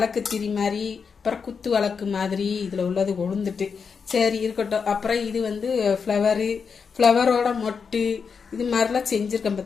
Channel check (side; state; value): right; quieter; 5.8 dB